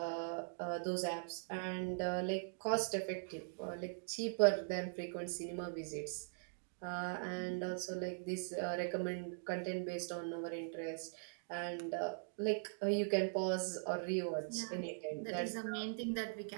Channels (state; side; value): silent; left; digital silence